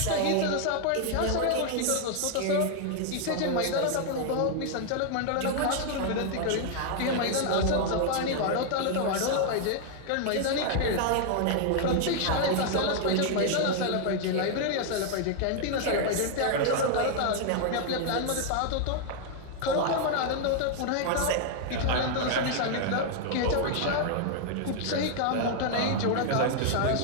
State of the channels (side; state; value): both; different; correlation 0.00